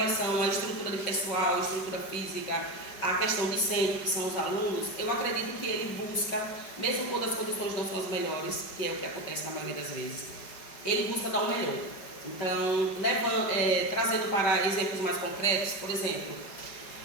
à estrutura de pessoal, estrutura física, a questão discente, que são os alunos, eu acredito que ele busca, mesmo quando as condições não são as melhores, que é o que acontece na maioria das vezes, ele busca dar o melhor. Então, trazendo para exemplos mais concretos, por exemplo,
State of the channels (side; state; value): right; late; 5.2 ms